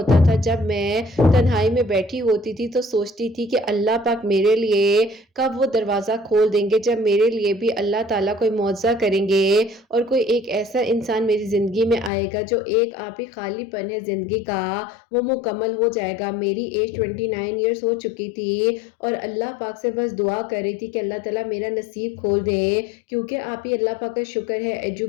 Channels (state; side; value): drops out; right; at 12.1 s